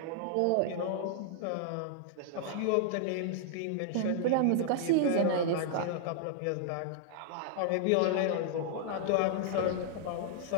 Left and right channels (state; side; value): different; both; correlation -0.01